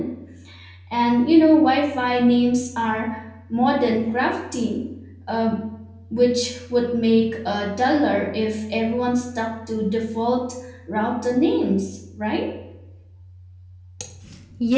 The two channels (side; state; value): both; identical; correlation 1.00